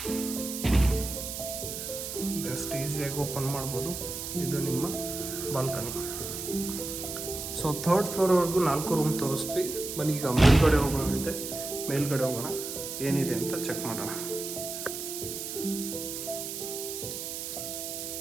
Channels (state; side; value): noise; right; hiss, 6 dB below the sound